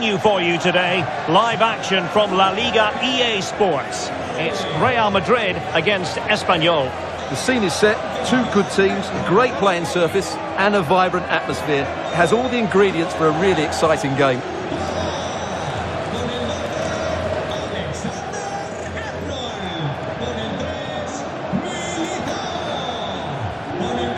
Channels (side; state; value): both; identical; correlation 1.00